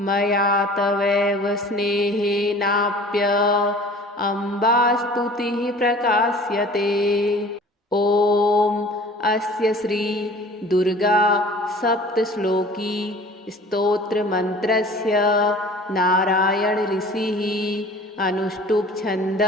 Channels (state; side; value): normal; both; correlation 0.46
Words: मया तवैव स्नेहेनाप्य अम्बास्तुतिः प्रकाश्यते। ॐ अस्य श्री दुर्गा सप्तश्लोकी स्तोत्रमन्त्रस्य नारायण ऋषिः अनुष्टुप्